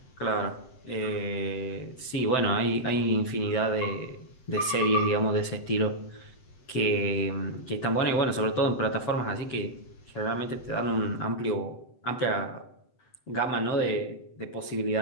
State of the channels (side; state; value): right; late; 7.9 ms